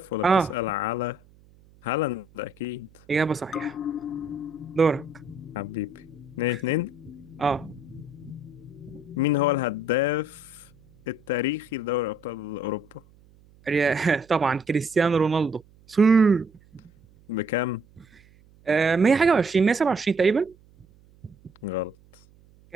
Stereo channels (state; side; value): noise; right; hum, 28 dB below the sound